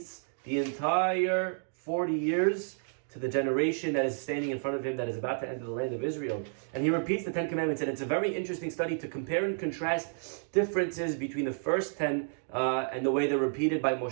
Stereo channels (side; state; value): left; silent; digital silence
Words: the entire 40 years to the generation that is standing in front of him that is about to enter the land of Israel. And he repeats the 10 commandments, and it's a very interesting study to compare and contrast differences between the first 10 and the way they're repeated by